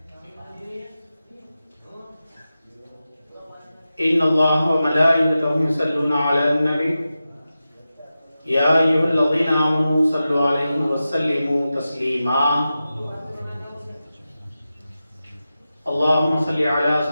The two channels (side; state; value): both; inverted; correlation -0.93